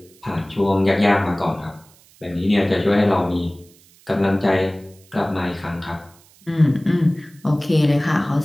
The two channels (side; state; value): right; noise; hiss, 28 dB below the sound